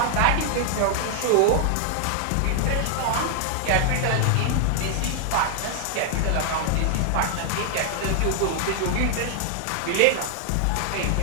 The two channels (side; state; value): both; different; correlation 0.00